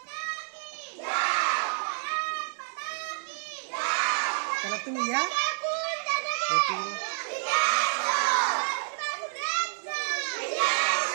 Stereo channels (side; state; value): left; silent; digital silence